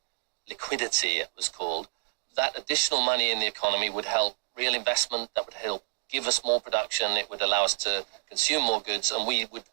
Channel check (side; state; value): left; silent; digital silence